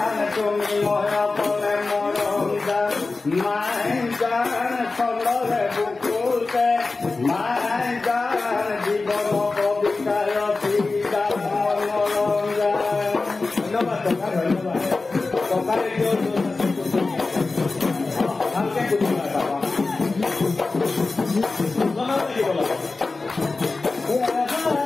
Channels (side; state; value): right; quieter; 3.7 dB